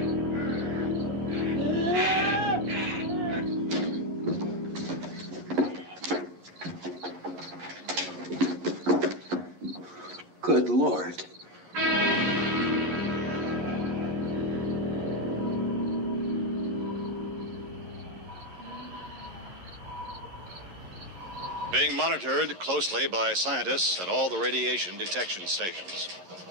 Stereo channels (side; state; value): left; late; 11 ms